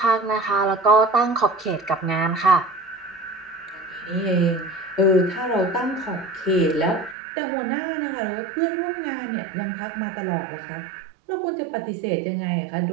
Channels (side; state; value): left; drops out; at 7.2 s